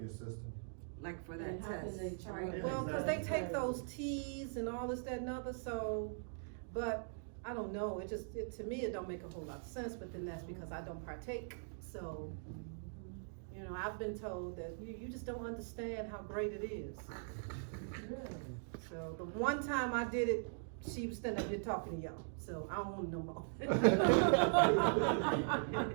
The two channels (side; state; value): left; silent; digital silence